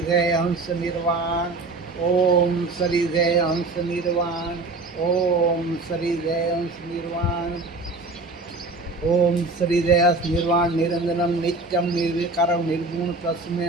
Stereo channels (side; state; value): left; quieter; 3.3 dB